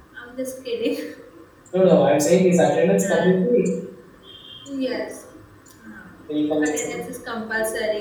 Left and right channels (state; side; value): identical; both; correlation 1.00